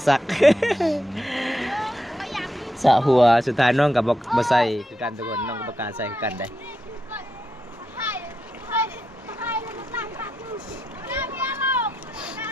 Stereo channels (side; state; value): both; normal; correlation 0.85